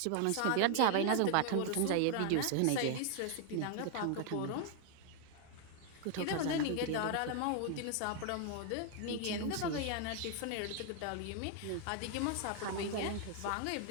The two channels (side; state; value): both; different; correlation 0.00